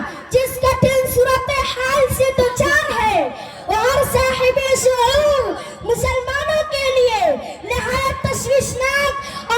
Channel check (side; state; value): both; identical; correlation 1.00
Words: जिस कठिन सूरत हाल से दुचार है और साहिबे शऊर मुसलमानों के लिए निहायत तशवीशनाक